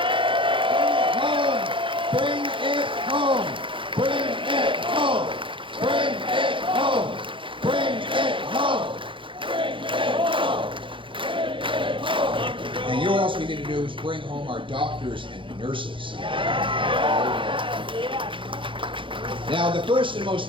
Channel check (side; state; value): left; late; 0.25 ms